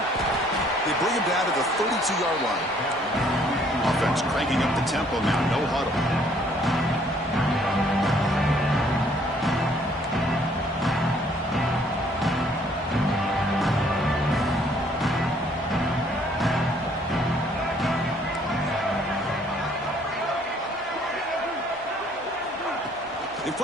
They bring him down to the 32-yard line. Offense cranking up the tempo now. No huddle. They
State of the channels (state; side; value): normal; both; correlation 0.62